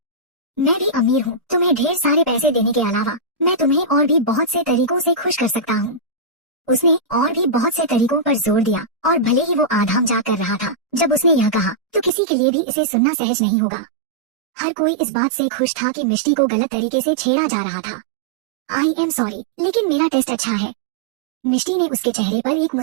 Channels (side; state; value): left; drops out; at 12.1 s